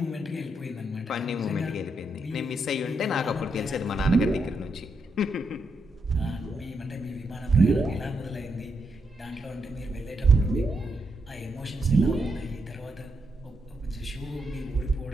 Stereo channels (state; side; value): normal; both; correlation 0.81